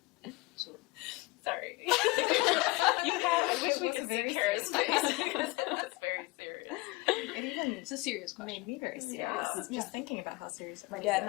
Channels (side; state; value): right; quieter; 23.8 dB